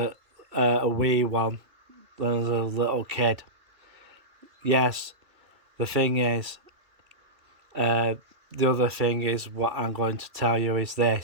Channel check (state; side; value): late; left; 2.6 ms